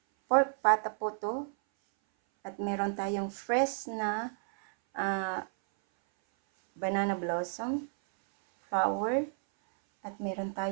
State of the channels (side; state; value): left; silent; 57 dB below the other